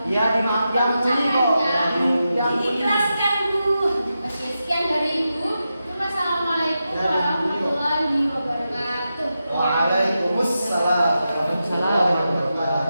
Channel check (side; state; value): both; inverted; correlation -0.89